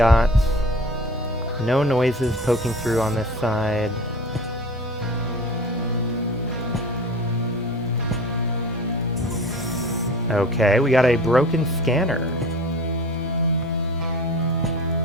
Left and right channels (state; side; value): normal; both; correlation 0.38